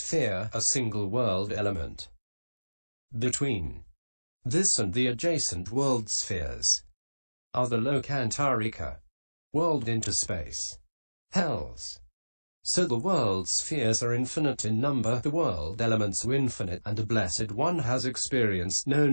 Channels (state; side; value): inverted; both; correlation -1.00